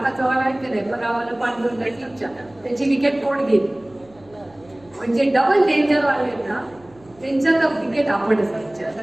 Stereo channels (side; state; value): right; noise; hum, 28 dB below the sound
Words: चव्हाण आहेत की नाही गावाला पांडुरंग टीमच्या त्यांची विकेट कोण घेईल. म्हणजे डबल डेंजर वाले ना त्यांच्या तर विकेट आपणच